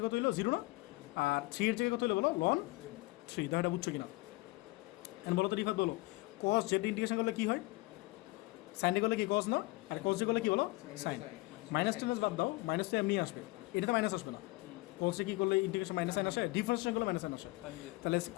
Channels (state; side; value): quieter; right; 22.2 dB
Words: কত হলো 0 না, আর 3 এর জায়গায় কত হলো বলো ln 3, তো এটা বুঝছো কিনা? এখন বলো তো রিফাত বলো cos z ইন্টিগ্রেশন করলে কী হয়, সাইনে করলে কি cos না, আর cos z করলে কি বলো সাইন, মাইনাস টেনাস বাদ দাও, মাইনাস তো এমনি আসবে, এটাতে মাইনাস আসবে না, cos কী করলে ইন্টিগ্রেশন মাইনাস সাইন আসে, ডিফারেন্সিয়েশন করলে মাইনাস সাইন আসে, তাহলে